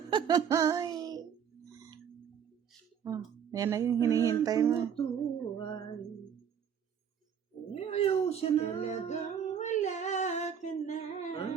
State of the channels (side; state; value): left; quieter; 7.9 dB